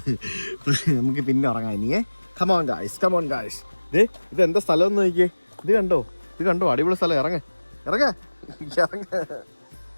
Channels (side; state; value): both; inverted; correlation -1.00